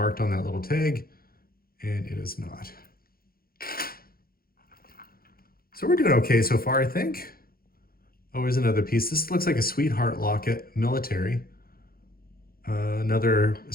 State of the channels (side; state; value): right; late; 0.43 ms